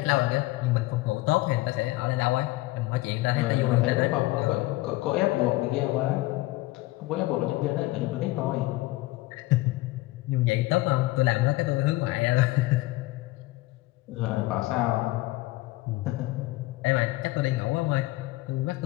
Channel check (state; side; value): quieter; right; 19.4 dB